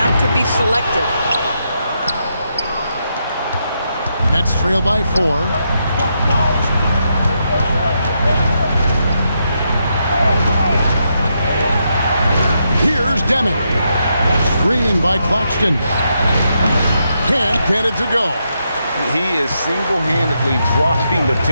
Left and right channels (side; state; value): both; inverted; correlation -0.81